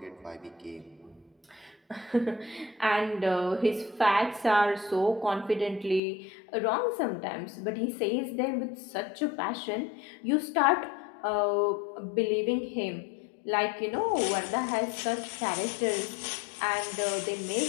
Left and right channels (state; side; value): drops out; right; at 6.0 s